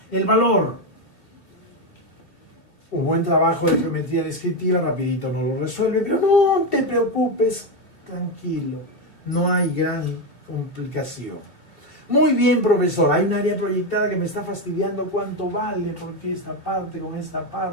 El valor. Un buen trabajo de geometría descriptiva, rapidito no lo resuelve, pero no te preocupes, tranquilo, no hay gran complicación. Muy bien, profesor, hay un área proyectada que me está fastidiando cuánto vale, porque esta parte con esta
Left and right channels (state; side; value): late; right; 2.9 ms